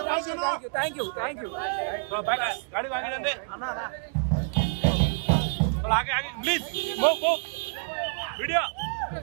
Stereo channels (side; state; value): left; silent; 60 dB below the other